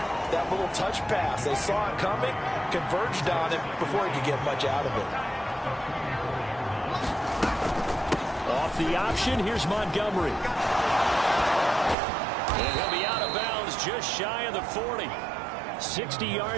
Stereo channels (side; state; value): left; drops out; at 12.0 s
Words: that little touch pass. They saw it coming, converged on it before he could get much out of it. Off the option, here's Montgomery. And he'll be out of bounds just shy of the 40. 60